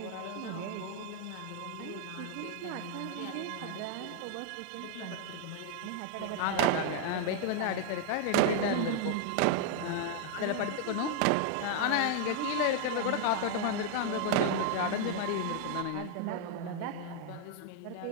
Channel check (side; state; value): both; different; correlation 0.00